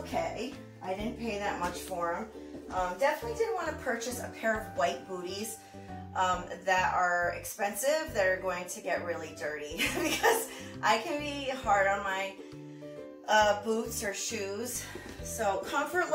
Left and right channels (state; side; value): identical; both; correlation 1.00